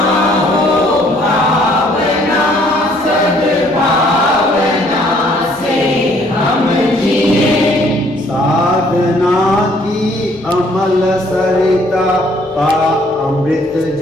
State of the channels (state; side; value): normal; both; correlation 0.62